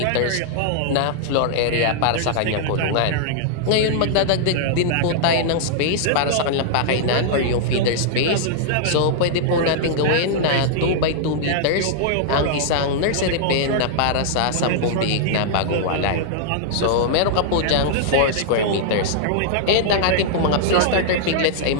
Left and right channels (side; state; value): both; different; correlation -0.01